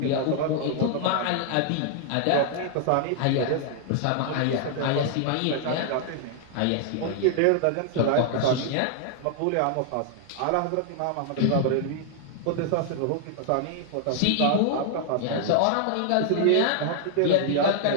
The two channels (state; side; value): different; both; correlation -0.01